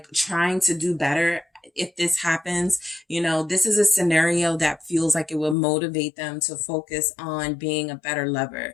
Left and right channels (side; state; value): right; drops out; at 5.6 s